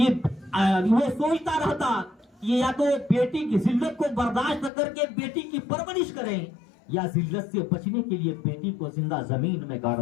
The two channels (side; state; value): right; drops out; at 4.7 s